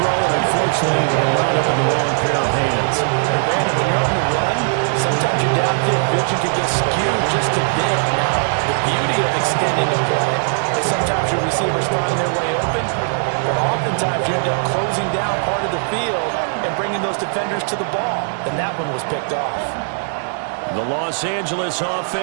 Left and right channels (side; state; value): left; silent; 67 dB below the other